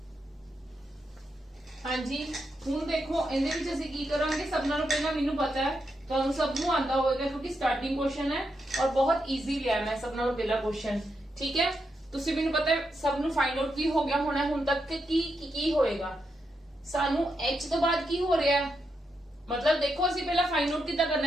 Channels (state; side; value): normal; both; correlation 0.83